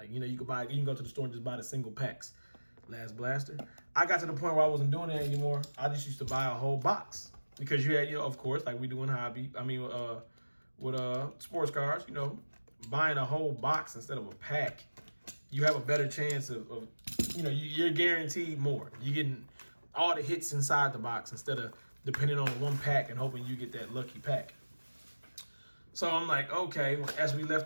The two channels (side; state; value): both; inverted; correlation -1.00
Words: you can go to the store and just buy the single packs. Last blaster. I got to the point where I wasn't doing that anymore. I just used to buy a whole box. Because you had, of course, like we do in hobby. With sports cars, buying a whole box instead of a pack, you have a better chance of you're guaranteed more. You're getting all the hits inside the box instead of depending on one pack and hoping you get that lucky pack. So I'm like, okay. As we